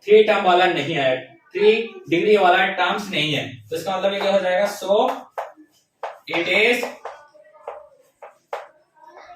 3 टर्म वाला नहीं है, 3 डिग्री वाला टर्म्स नहीं है, तो इसका मतलब ये क्या हो जाएगा so it is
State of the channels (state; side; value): identical; both; correlation 1.00